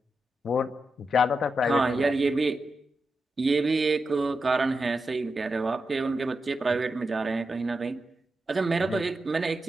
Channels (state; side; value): normal; both; correlation 0.88